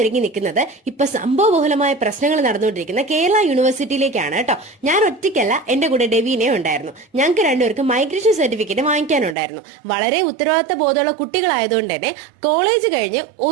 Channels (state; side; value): drops out; left; at 9.3 s